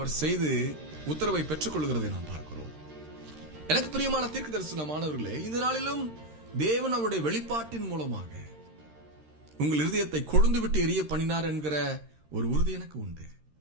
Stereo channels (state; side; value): late; left; 13 ms